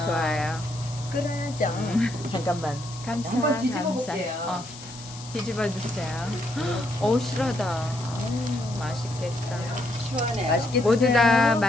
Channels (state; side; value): noise; left; hiss, 15 dB below the sound